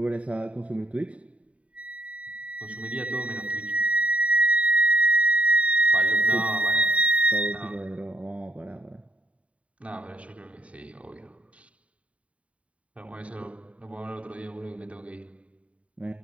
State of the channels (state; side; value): late; left; 0.065 ms